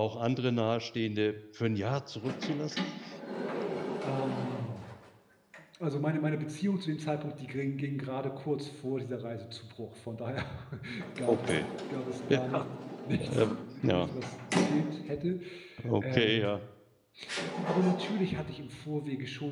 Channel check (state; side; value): identical; both; correlation 1.00